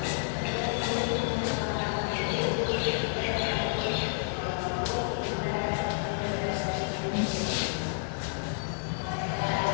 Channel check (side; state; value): right; silent; digital silence